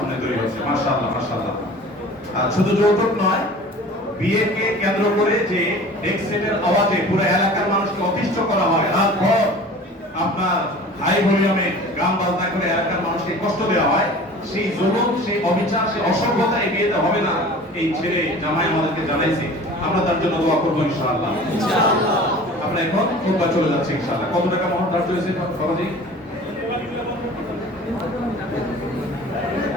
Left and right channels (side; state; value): both; normal; correlation 0.42